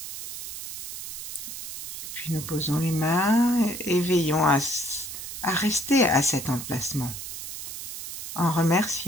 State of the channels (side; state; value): right; noise; hiss, 8 dB below the sound